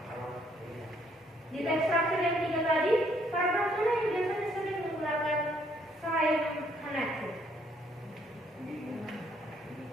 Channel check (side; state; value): both; normal; correlation 0.68